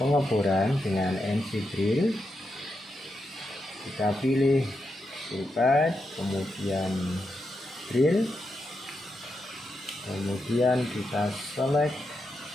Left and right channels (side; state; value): both; normal; correlation 0.85